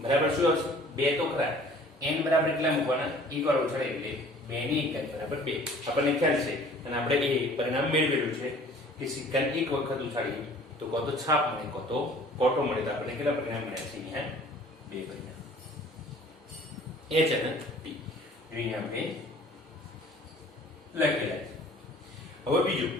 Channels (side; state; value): both; normal; correlation 0.50